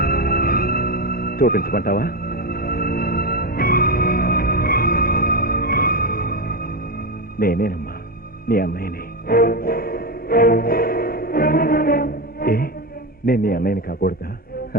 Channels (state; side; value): normal; both; correlation 0.14